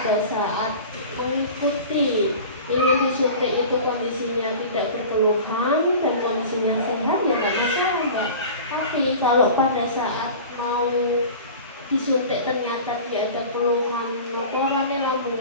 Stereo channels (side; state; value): both; inverted; correlation -0.38